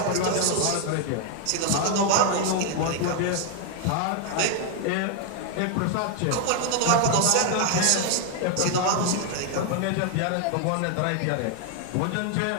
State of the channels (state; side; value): different; both; correlation 0.00